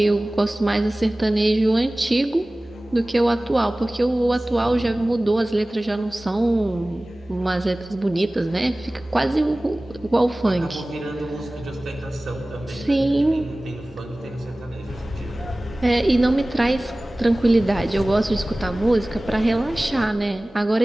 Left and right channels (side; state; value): both; normal; correlation 0.98